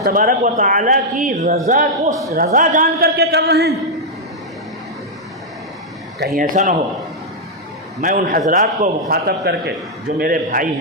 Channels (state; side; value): normal; both; correlation -0.04